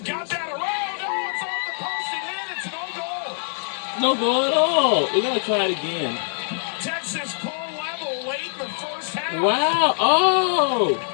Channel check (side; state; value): right; silent; digital silence